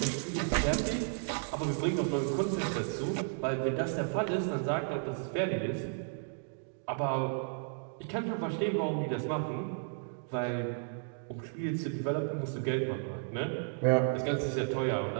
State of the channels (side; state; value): left; silent; digital silence